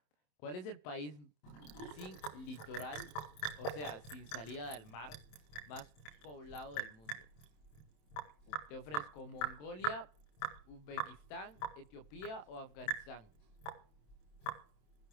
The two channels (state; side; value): late; right; 26 ms